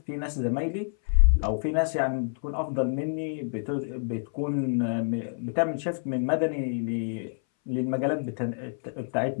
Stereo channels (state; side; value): silent; right; 59 dB below the other